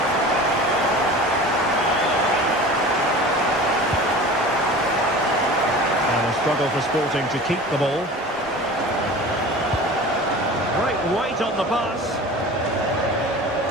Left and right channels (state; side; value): normal; both; correlation 0.38